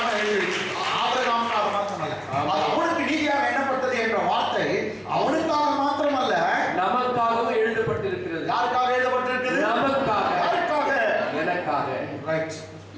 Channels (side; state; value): both; identical; correlation 1.00